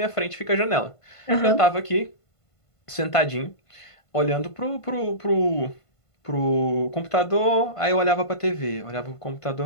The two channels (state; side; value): late; right; 1.5 ms